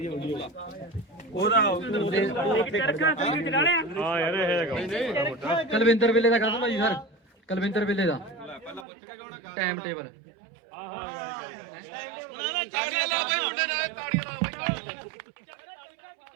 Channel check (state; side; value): drops out; left; at 8.8 s